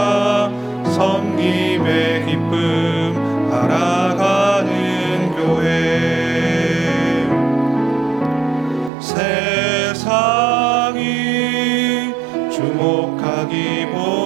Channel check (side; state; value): left; drops out; at 8.9 s